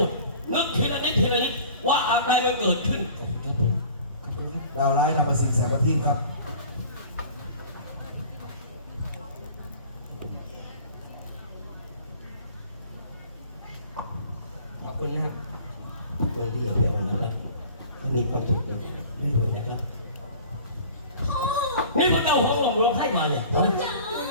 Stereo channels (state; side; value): inverted; both; correlation -0.45